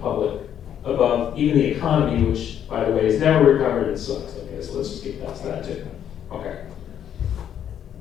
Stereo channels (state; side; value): quieter; right; 9.6 dB